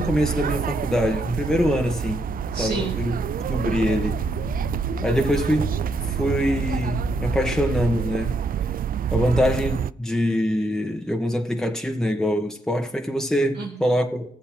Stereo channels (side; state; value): both; normal; correlation 0.77